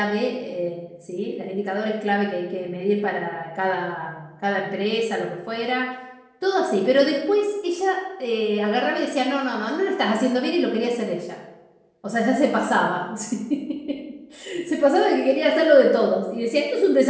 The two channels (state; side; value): identical; both; correlation 1.00